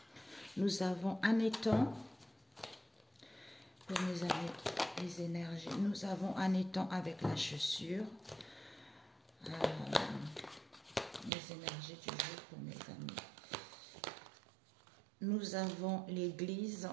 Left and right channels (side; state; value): left; drops out; at 11.3 s